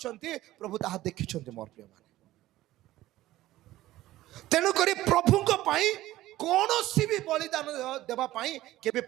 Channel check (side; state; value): left; quieter; 15.7 dB